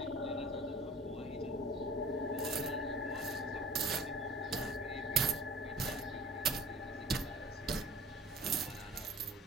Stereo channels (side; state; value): both; normal; correlation 0.46